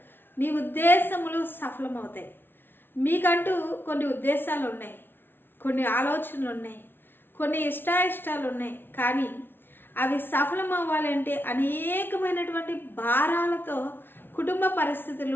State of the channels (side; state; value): right; late; 0.10 ms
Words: నీ ఉద్దేశములు సఫలమవుతాయి. మీకంటూ కొన్ని ఉద్దేశాలు ఉన్నాయి, కొన్ని ఆలోచనలు ఉన్నాయి, కొన్ని ఇష్టాయిష్టాలు ఉన్నాయి. కానీ అవి సఫలం అవ్వాలంటే అనేకమైనటువంటి భారాలతో కుటుంబ